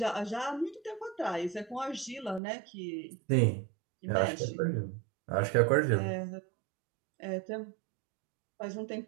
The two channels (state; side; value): drops out; left; at 2.4 s